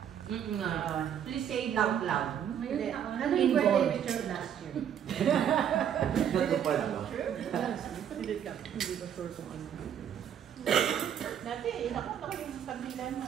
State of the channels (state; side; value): quieter; left; 9.1 dB